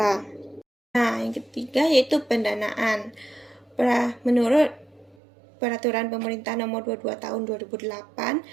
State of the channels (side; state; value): left; drops out; at 5.2 s